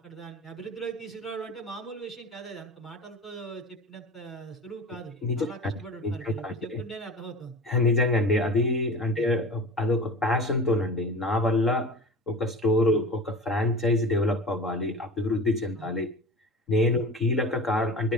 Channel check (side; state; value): both; normal; correlation 0.34